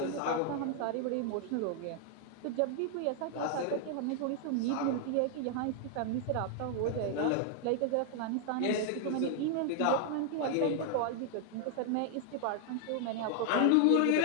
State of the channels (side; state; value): both; different; correlation 0.00